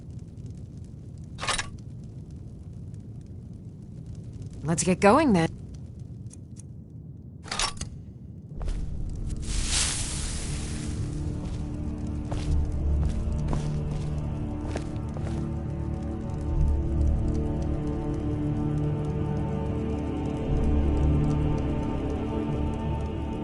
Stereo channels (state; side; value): identical; both; correlation 1.00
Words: Let's get going then.